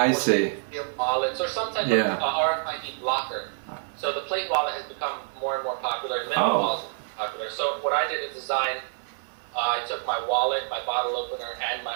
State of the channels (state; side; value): silent; left; digital silence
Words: see. Steel wallets or some type of RFID blocker. So the plate wallet has become more and more popular, and minimal wallets are popular. So what I did is design. I took my wallet, my bottle opener, and my